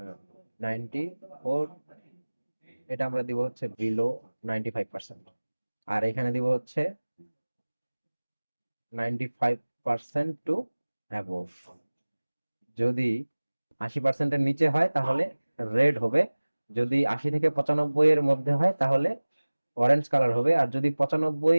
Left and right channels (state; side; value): inverted; both; correlation -1.00